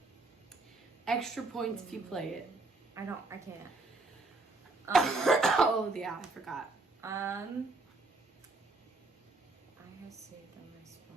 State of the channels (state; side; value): quieter; left; 3.3 dB